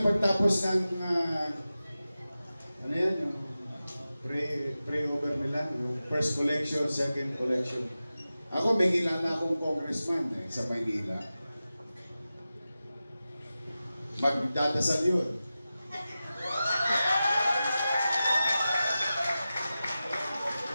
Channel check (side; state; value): both; inverted; correlation -0.94